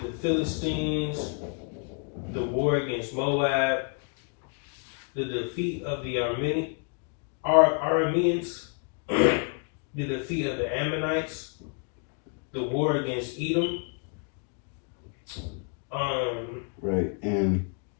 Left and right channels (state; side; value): quieter; right; 37.9 dB